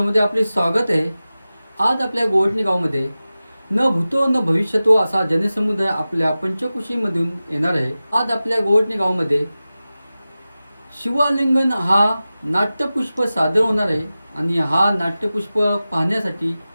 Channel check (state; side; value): inverted; both; correlation -0.95